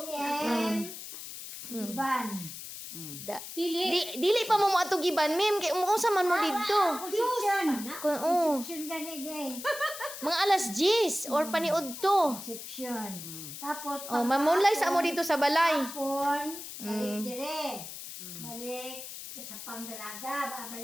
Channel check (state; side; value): noise; left; hiss, 10 dB below the sound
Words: Iban. Dili pa mo atog iban, ma'am, kay unsa man mo didto. Conception. Oh, Conception gani day. mga alas 10 or paniud to. Conception. Tapos, Oh, mamunlay sa mo dito sa balay. hapon, balik dire. Balik sa pangdalaga,